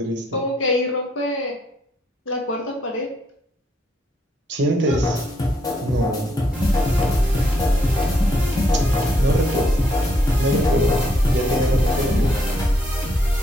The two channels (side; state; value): both; normal; correlation 0.73